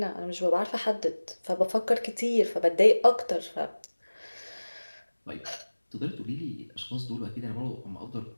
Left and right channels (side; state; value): both; inverted; correlation -1.00